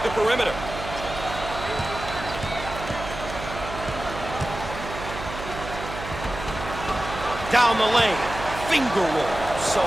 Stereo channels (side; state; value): right; noise; hum, 9 dB below the sound